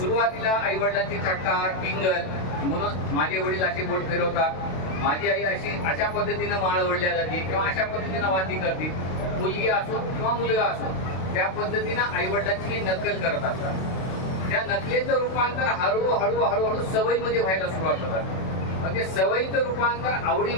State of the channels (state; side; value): late; right; 32 ms